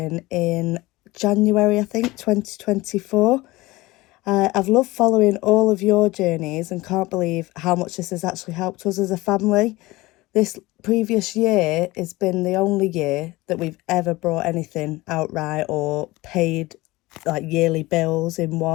in January, I think, 2024. I've loved following all of your journeys and can't believe how much this has actually helped us as a family. This previous year has been the only year that we've ever brought anything outright or paid like yearly bills in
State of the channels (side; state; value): right; quieter; 20.3 dB